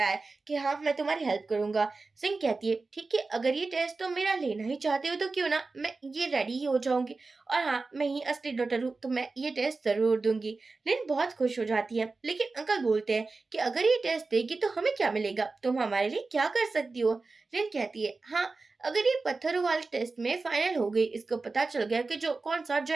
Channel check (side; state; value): left; quieter; 3.8 dB